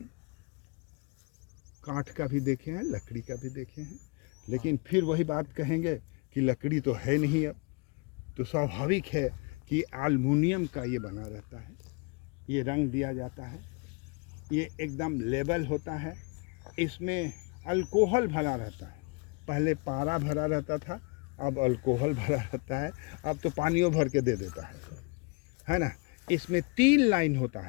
काठ का भी देखे हैं, लकड़ी का भी देखे हैं, लेकिन फिर वही बात कहेंगे कि लकड़ी तो है नहीं। अब तो स्वाभाविक है कि एल्युमिनियम का ये बना रहता है, ये रंग दिया जाता है, ये एकदम लेबल होता है। इसमें अल्कोहल भरा रहता है। पहले पारा भरा रहता था, अब अल्कोहल भरा रहता है, अब तो पानियों भर के दे देता है ना। इसमें 3 लाइन होता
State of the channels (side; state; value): right; quieter; 32.3 dB